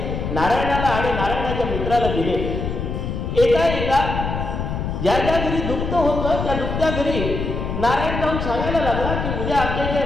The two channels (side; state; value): left; noise; rumble, 3 dB below the sound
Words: नारायणाला आणि नारायणाच्या मित्राला दिले. एका ज्या ज्या घरी दुःख होतं त्या दुःख्या घरी नारायण जाऊन सांगायला लागला की उद्या आमच्या इथे